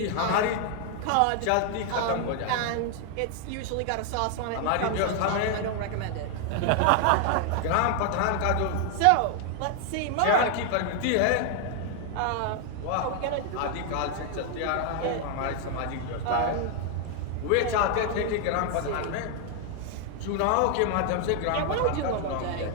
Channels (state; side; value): different; both; correlation 0.00